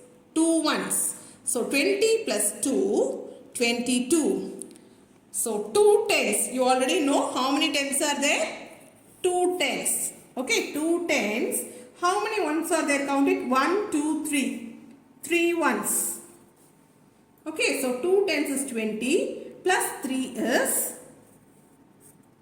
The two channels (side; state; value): both; identical; correlation 1.00